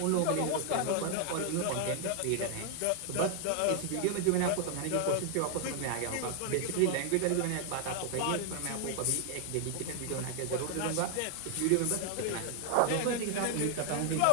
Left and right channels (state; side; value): different; both; correlation 0.00